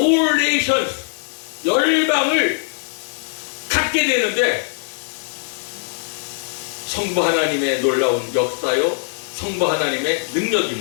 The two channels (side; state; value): right; silent; digital silence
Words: nations, 열방을 갖게 되는데 성부 하나님의 놀라운 역사요, 성부 하나님의